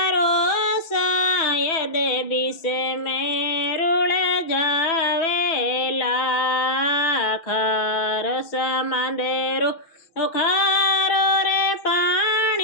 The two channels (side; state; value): right; late; 6.1 ms